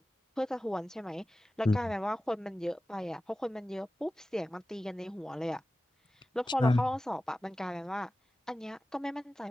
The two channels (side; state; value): both; normal; correlation 0.95